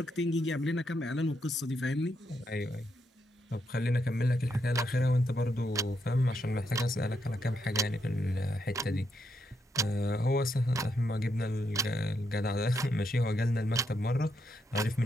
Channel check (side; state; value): both; normal; correlation 0.79